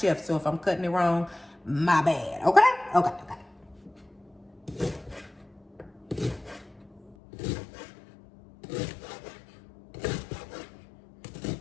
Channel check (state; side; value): drops out; right; at 7.2 s